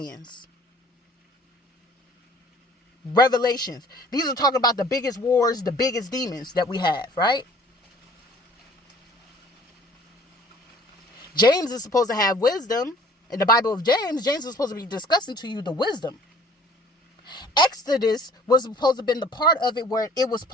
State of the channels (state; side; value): normal; both; correlation 0.53